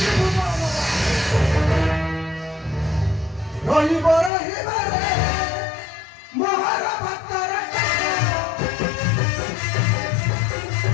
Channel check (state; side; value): drops out; right; at 4.3 s